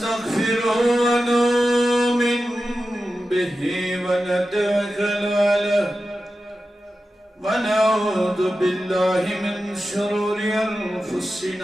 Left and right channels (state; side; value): normal; both; correlation 0.92